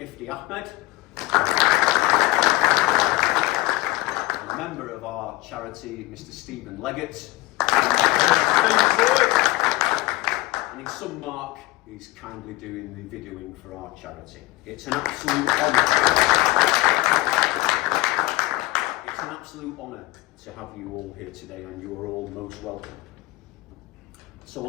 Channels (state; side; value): quieter; right; 20.0 dB